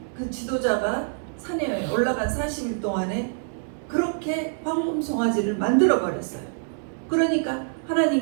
그 지도자가 산에 올라간 40일 동안에 그렇게 황금 송아지를 만들어 버렸어요. 그러니까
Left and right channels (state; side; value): silent; left; digital silence